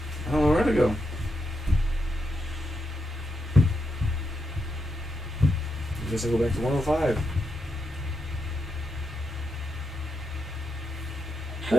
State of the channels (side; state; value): both; normal; correlation 0.84